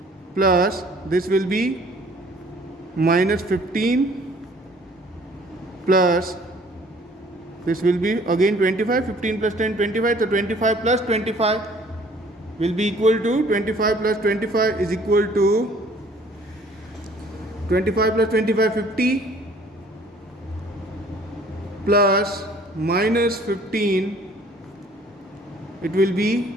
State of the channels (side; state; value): both; normal; correlation 0.55